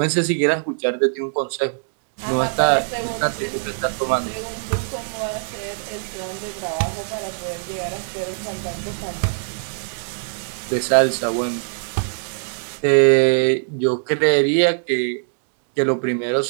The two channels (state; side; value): silent; left; digital silence